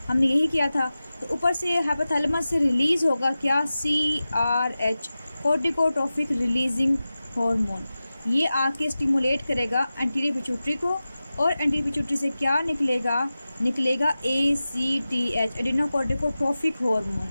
हमने यही किया था। तो ऊपर से हाइपोथैलेमस से रिलीज़ होगा क्या? CRH, corticotrophic releasing hormone. ये आके स्टिमुलेट करेगा एंटीरियर पिट्यूटरी को, और एंटीरियर पिट्यूटरी से क्या निकलेगा? निकलेगा ACTH, एडिनोकोर्टिकोट्रोफिक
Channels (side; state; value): both; inverted; correlation -0.95